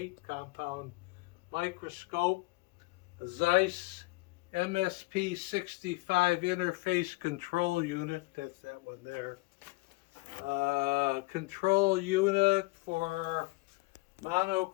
compound microscope, a ZEISS MSP 65 interface control unit. That's that one there. Control unit for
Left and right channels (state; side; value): quieter; right; 24.4 dB